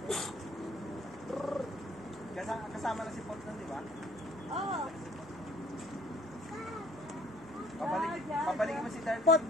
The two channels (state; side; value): normal; both; correlation 0.57